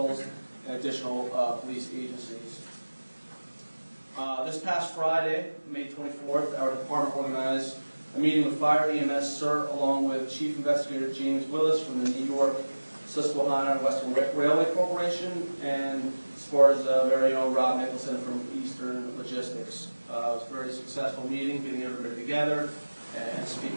and additional police agencies. This past Friday, May 24th, our department organized a meeting with Fire, EMS, CERT, along with Chief Investigator James Willis from the New York, Susquehanna, and Western Railway Corporation, and Sparta's very own Rob Nicholson from Eastern Logistics. It was a very successful meeting, getting everybody together and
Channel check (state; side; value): inverted; both; correlation -1.00